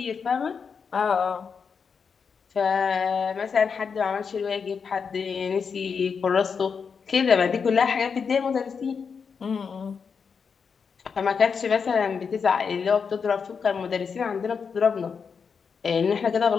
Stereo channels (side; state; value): right; quieter; 6.0 dB